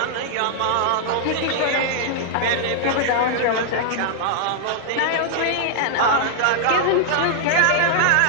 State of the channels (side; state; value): both; different; correlation -0.01